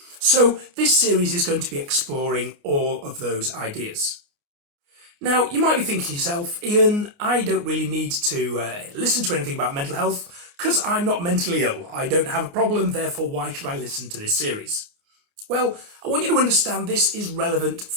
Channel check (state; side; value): late; left; 29 ms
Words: So this series is going to be exploring all of those ideas. Now, you might be thinking to yourself, Ian, I don't really need to listen to anything about mental health because I'm not mentally ill. I don't have a problem, therefore why should I listen to this series? Well, I want you to understand this is relevant